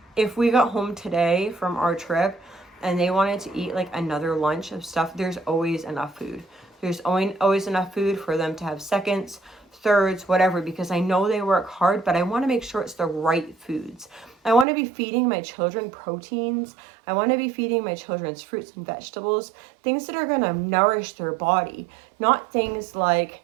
if we got home today from our trip and they wanted to eat like another lunch of stuff, there's always enough food. There's always enough food for them to have seconds, thirds, whatever, because I know they work hard, but I want to make sure it's the right foods. I want to be feeding my children proteins. I want to be feeding my children's fruits and vegetables, things that are going to nourish their body, not things like,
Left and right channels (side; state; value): left; drops out; at 14.7 s